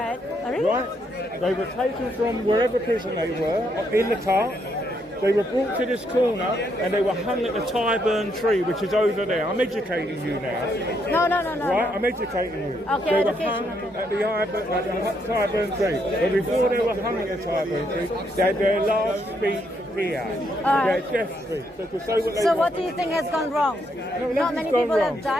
right. Really? Right? They were taken from wherever prison they were in the cart. They were brought to this corner and they were hung at the Tyburn tree, which is over there. I'm educating you now. No. Right? I'm educating you. Okay, They were hung at the Tyburn tree. But before they were hung at the Tyburn tree, they had their last speech here. Their death speech. So to say what they So want. what do you think has gone wrong? No, Not many gone people wrong. have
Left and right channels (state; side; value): normal; both; correlation 0.75